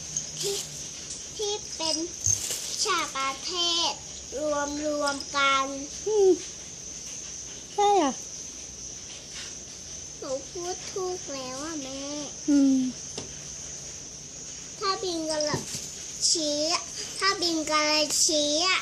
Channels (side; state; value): left; noise; hum, 26 dB below the sound